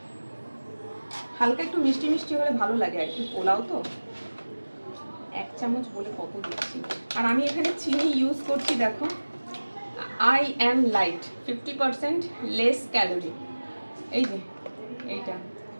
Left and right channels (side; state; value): both; inverted; correlation -1.00